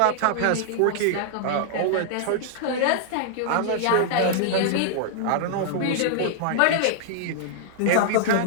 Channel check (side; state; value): both; different; correlation -0.01